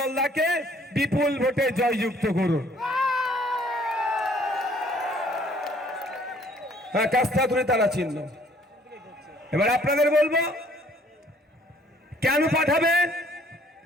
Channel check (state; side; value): normal; both; correlation 0.60